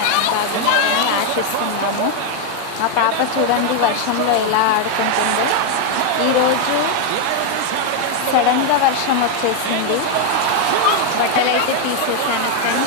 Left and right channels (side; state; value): both; different; correlation 0.01